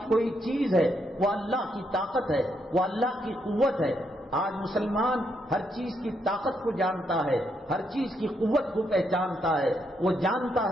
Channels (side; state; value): both; normal; correlation 0.77